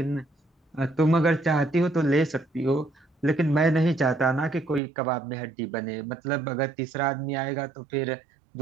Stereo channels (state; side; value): drops out; left; at 4.8 s